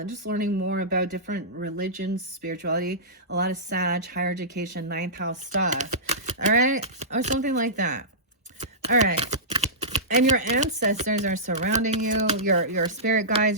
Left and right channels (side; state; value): both; normal; correlation -0.17